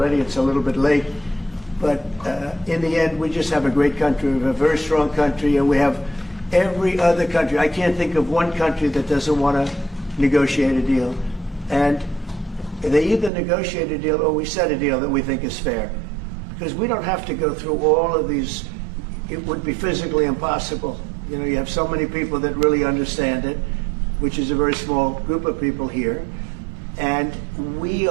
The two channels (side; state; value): left; drops out; at 13.3 s